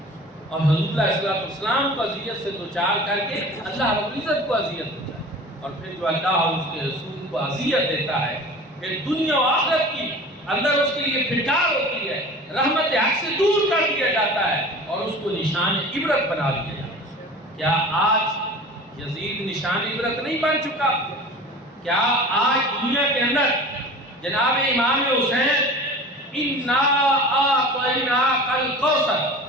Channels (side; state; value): both; normal; correlation 0.39